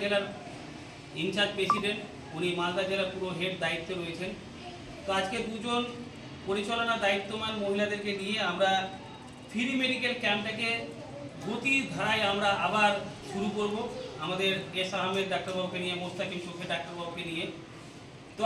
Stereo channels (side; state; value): both; identical; correlation 1.00